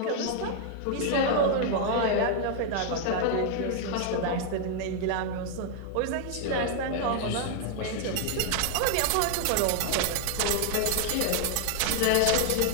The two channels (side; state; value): both; different; correlation 0.00